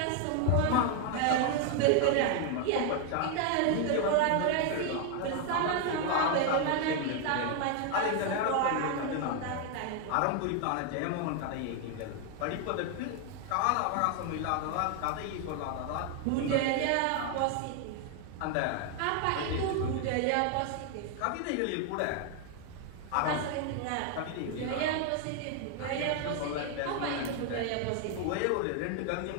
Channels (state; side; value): different; both; correlation 0.01